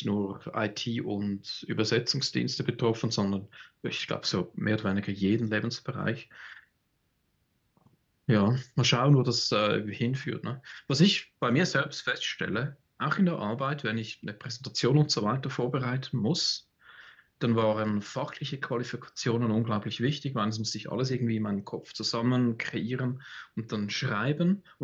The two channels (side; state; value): both; identical; correlation 1.00